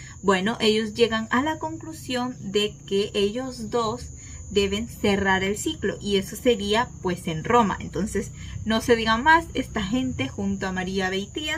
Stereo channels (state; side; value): identical; both; correlation 1.00